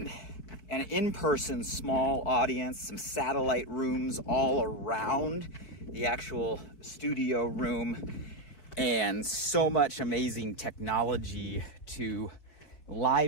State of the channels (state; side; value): late; right; 4.5 ms